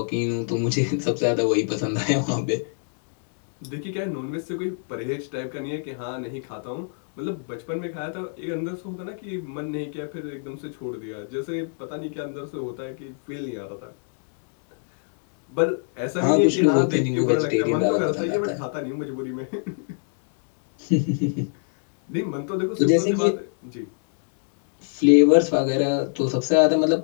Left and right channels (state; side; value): silent; right; 58 dB below the other